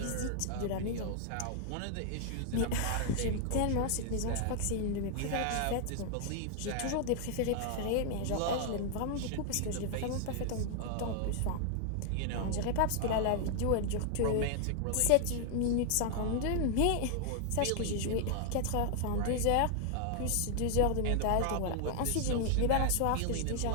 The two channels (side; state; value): both; different; correlation 0.00